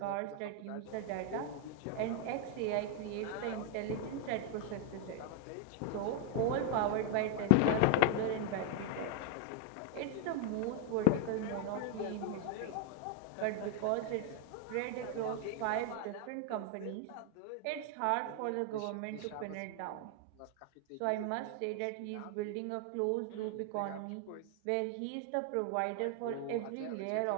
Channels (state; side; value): different; both; correlation 0.00